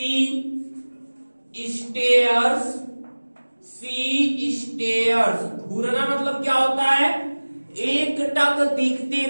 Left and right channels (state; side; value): inverted; both; correlation -1.00